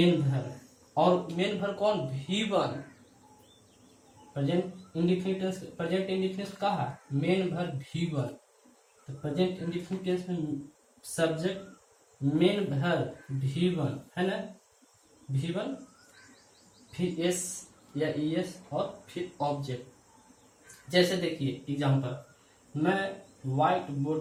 वर्ब, और मेन वर्ब कौन? V1। प्रेजेंट इंडेफिनिट टेंस का है मेन वर्ब V1। तो प्रेजेंट इंडेफिनिट टेंस में सब्जेक्ट मेन वर्ब V1 है ना, V1 फिर एस या ईएस और फिर ऑब्जेक्ट। जैसे देखिए एग्जांपल, मैं व्हाइट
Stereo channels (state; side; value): identical; both; correlation 1.00